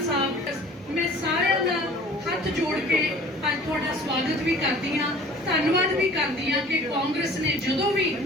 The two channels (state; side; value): normal; both; correlation 0.47